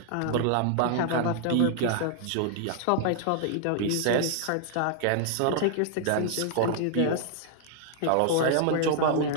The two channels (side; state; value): both; different; correlation -0.01